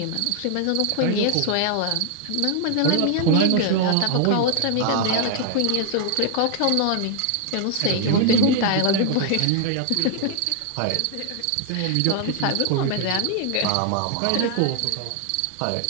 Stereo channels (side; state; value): both; different; correlation 0.00